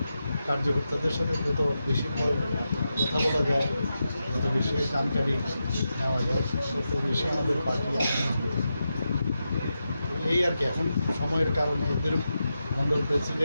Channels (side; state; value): both; inverted; correlation -0.89